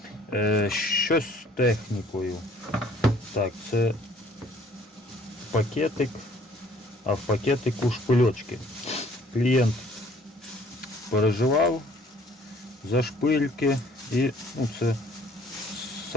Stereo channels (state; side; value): normal; both; correlation 0.57